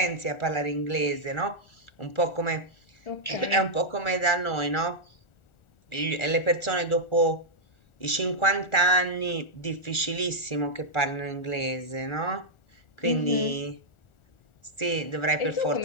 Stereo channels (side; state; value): right; late; 1.4 ms